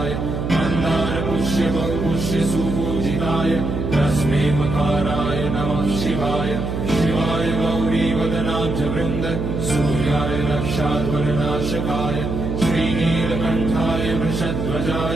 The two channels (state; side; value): noise; right; hum, 3 dB below the sound